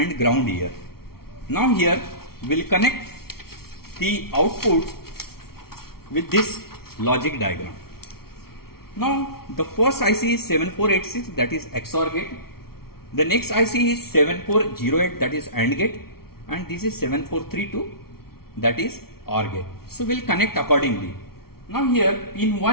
ground here. Now here we'll connect the output with this logic diagram. Now the first IC is 7486, that is XOR gate. The next IC is 7408, that is AND gate, and this is 7432, that is OR gate. So we'll connect accordingly. Now here pin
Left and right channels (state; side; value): late; right; 0.94 ms